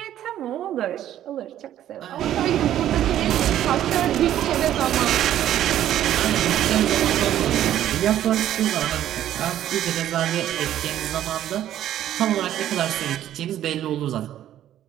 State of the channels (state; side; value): quieter; left; 11.9 dB